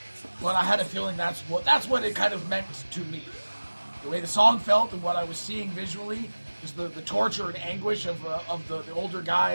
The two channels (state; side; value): inverted; both; correlation -1.00